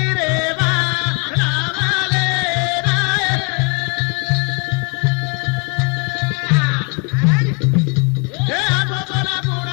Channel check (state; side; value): quieter; right; 34.1 dB